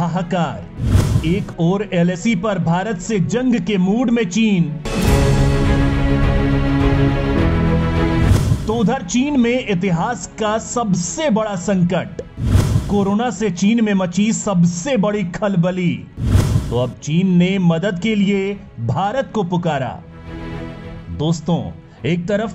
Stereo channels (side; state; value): both; identical; correlation 1.00